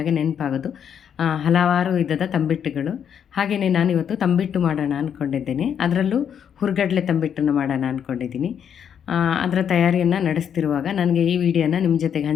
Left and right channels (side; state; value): right; quieter; 8.3 dB